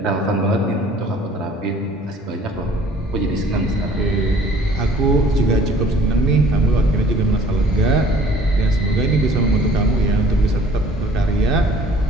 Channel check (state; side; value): normal; both; correlation 0.53